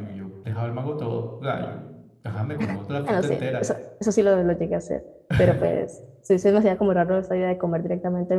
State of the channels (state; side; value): identical; both; correlation 1.00